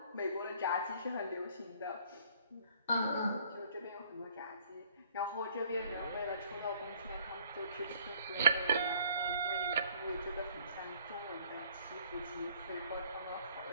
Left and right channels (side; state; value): both; inverted; correlation -0.59